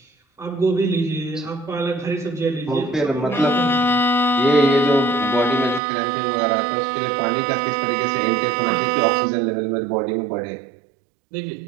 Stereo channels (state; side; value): drops out; left; at 5.8 s